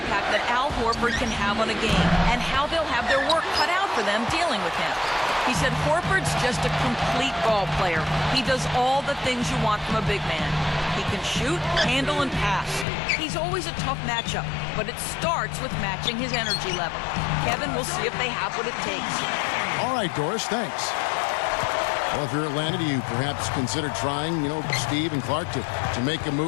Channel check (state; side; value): drops out; right; at 12.9 s